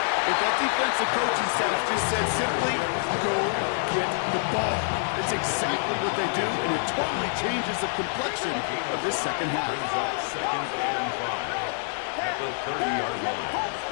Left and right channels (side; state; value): right; silent; 60 dB below the other